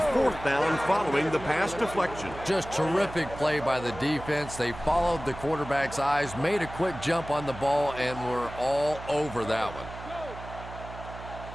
down following the pass deflection. Just terrific play by the defense. They followed the quarterback's eyes, made a quick jump on the ball, and were all over that one.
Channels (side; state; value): right; noise; hum, 13 dB below the sound